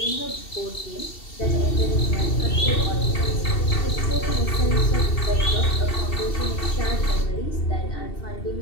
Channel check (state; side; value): late; right; 2.7 ms